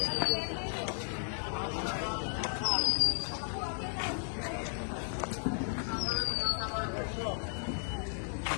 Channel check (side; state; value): right; silent; 55 dB below the other